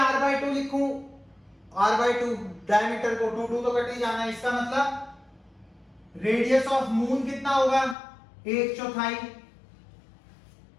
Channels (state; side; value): drops out; right; at 8.0 s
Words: लिखूं, R/2 डायमीटर को 2 तो कट ही जाना है। इसका मतलब रेडियस ऑफ मून कितना होगा? 1/4।